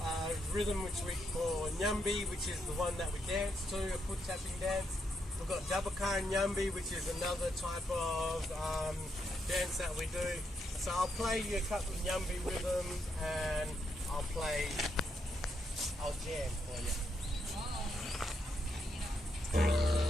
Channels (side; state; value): both; normal; correlation 0.79